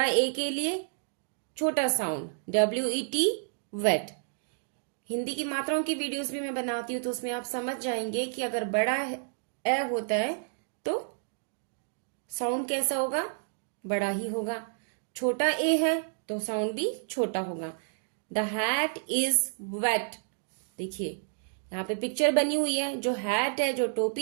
ए के लिए छोटा साउंड WET वेट। हिंदी की मात्राओं की वीडियोस भी मैं बनाती हूँ, तो उसमें आप समझ जाएंगे कि अगर बड़ा ए होता है तो साउंड कैसा होगा? बड़ा ही होगा। छोटा ए है तो साउंड भी छोटा होगा। The hat is wet. देखिए यहाँ पे पिक्चर बनी हुई है, जो हैट है, जो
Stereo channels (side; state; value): left; silent; digital silence